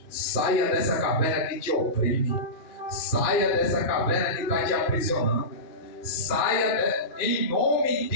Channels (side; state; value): right; late; 2.4 ms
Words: Saia dessa caverna que te oprime. Saia dessa caverna que está te aprisionando. Saia em nome